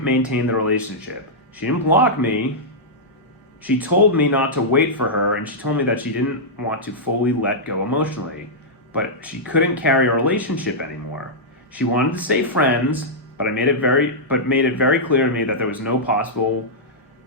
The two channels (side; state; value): both; normal; correlation -0.10